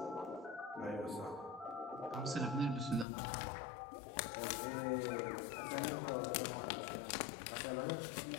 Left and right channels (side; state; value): right; drops out; at 3.1 s